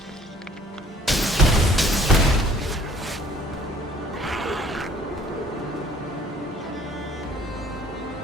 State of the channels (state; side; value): normal; both; correlation 0.56